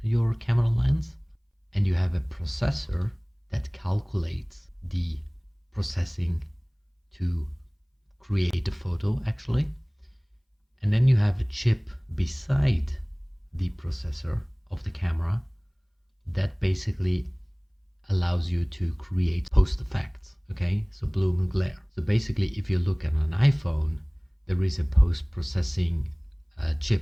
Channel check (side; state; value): both; identical; correlation 1.00